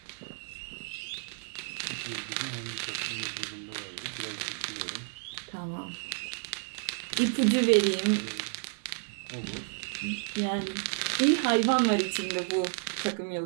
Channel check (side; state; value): left; silent; 57 dB below the other